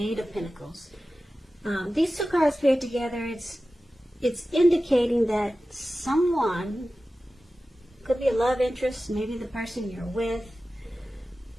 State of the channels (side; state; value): both; normal; correlation 0.95